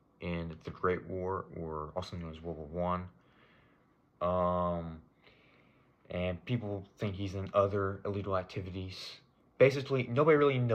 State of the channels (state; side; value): identical; both; correlation 1.00